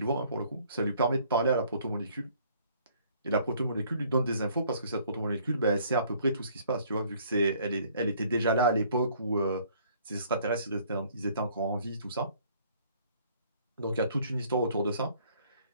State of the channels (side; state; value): both; inverted; correlation -0.60